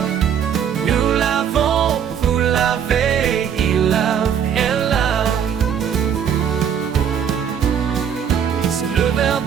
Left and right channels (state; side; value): quieter; left; 8.3 dB